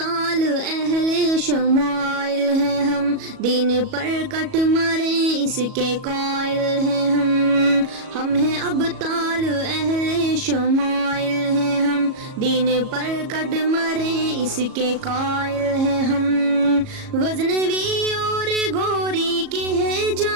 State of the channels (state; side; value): late; left; 37 ms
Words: اہل شمائل ہیں ہم، دین پر کٹ مرے اس کے قائل ہیں ہم ہیں ابطال اہل شمائل ہیں ہم، دین پر کٹ مرے اس کے قائل ہیں ہم۔ غزنوی اور گوری کے ہیں